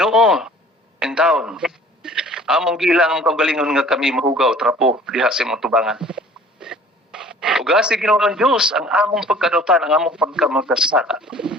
in taon, among gilang ang kaugalingon nga kami mahugaw trapo diha sa imong tubangan. Ugasi Ginoo ang Dios ang among pagkadautan, ang among pagkamagkasala.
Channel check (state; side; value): normal; both; correlation 0.50